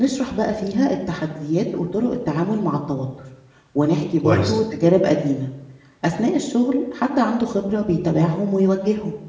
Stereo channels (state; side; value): identical; both; correlation 1.00